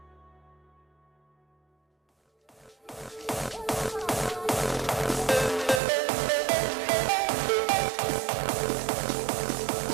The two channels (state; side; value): drops out; left; at 5.8 s